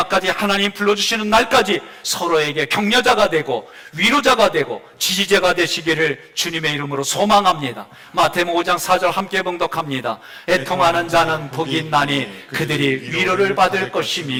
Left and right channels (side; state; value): both; identical; correlation 1.00